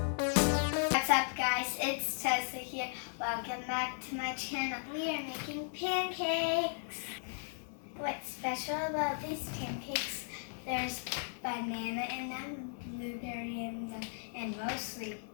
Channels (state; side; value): silent; right; digital silence